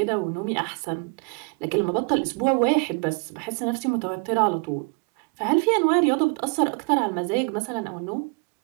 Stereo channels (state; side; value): quieter; left; 34.2 dB